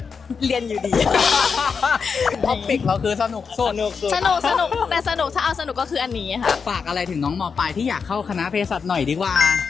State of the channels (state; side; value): quieter; right; 5.7 dB